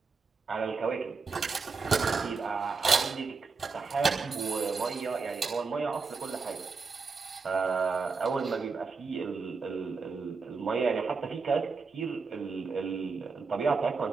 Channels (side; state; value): left; quieter; 4.7 dB